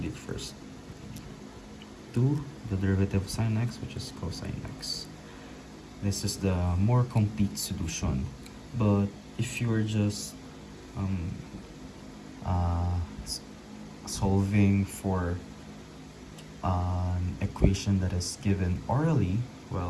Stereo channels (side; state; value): both; identical; correlation 1.00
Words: it first. 2, the derivative of sine x, which is cosine x. This is the more complete solution. But if you're just solving for an equation that is given orally,